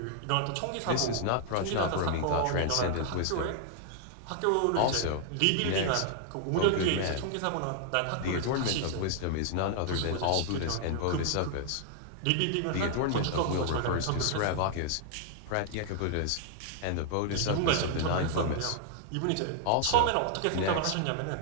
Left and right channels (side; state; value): both; different; correlation 0.00